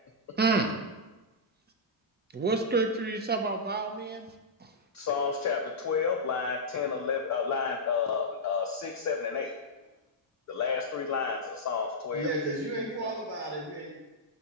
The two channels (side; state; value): both; normal; correlation -0.08